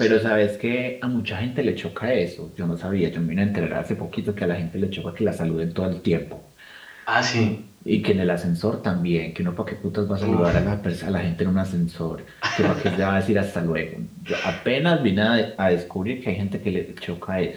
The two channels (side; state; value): both; identical; correlation 1.00